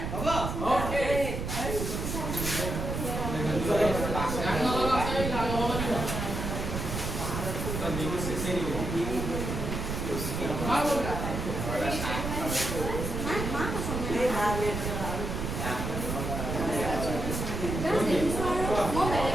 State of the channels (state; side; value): noise; right; rumble, 3 dB below the sound